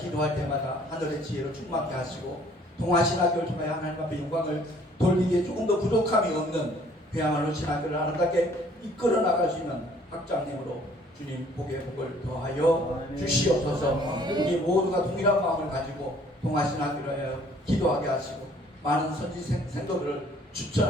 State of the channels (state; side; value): normal; both; correlation 0.58